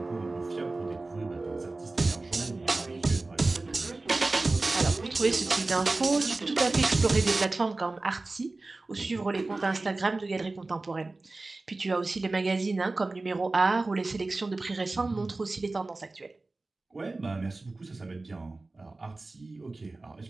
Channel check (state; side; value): quieter; left; 3.3 dB